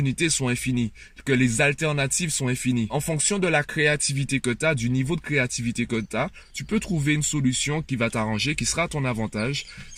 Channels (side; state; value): both; identical; correlation 1.00